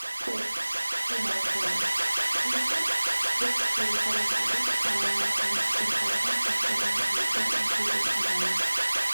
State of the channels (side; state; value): both; inverted; correlation -1.00